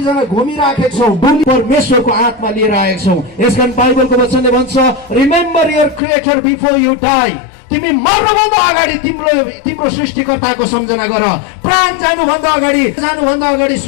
घुमिराखेका छौँ, डुली परमेश्वरको आत्मा लिएर आएका छौँ। यसकारण बाइबलको वचनले भन्छ, remember your creator before you die. तिमी मर्नुभन्दा अगाडि तिम्रो सृष्टिकर्ताको सम्झना गर। प्राण जानुभन्दा अगाडि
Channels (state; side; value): drops out; right; at 6.0 s